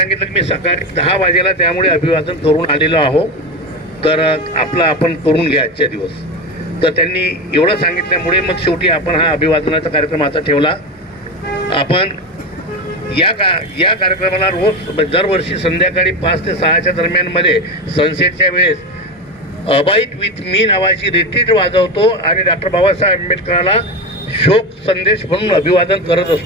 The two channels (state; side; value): normal; both; correlation 0.19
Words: की मी सकाळी 10 वाजेला त्यामुळे अभिवादन करून आलेलो आहो, तर आपण करून घ्या आजच्या दिवस. तर त्यांनी एवढं सांगितल्यामुळे मग शेवटी आपण हा अभिवादनाचा कार्यक्रम आता ठेवला. आपण या कार्यक्रमाला रोज दरवर्षी संध्याकाळी 5 ते 6च्या दरम्यानमध्ये सनसेटच्या वेळेस अबाईट विथ मी नावाची रिट्रीट वाजवतो आणि डॉक्टर बाबासाहेब आंबेडकरांना शोक संदेश म्हणून अभिवादन करत